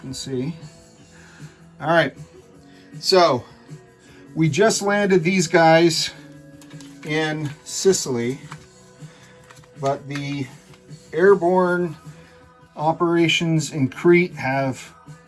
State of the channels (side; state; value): both; identical; correlation 1.00